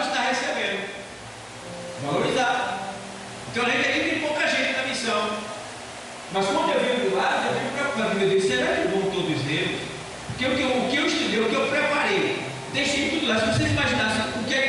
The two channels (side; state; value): both; identical; correlation 1.00